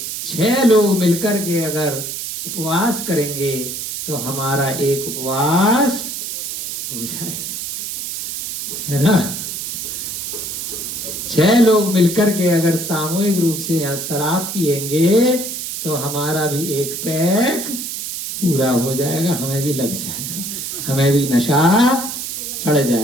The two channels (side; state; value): right; noise; hiss, 5 dB below the sound